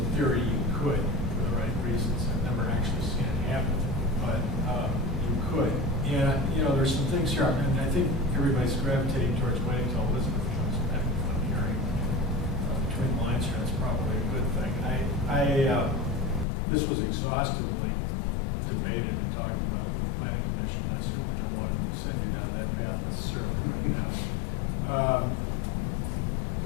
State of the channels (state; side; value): drops out; right; at 16.4 s